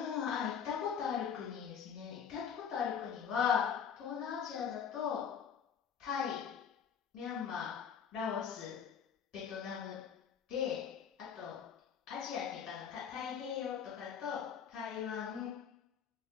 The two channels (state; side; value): quieter; right; 7.6 dB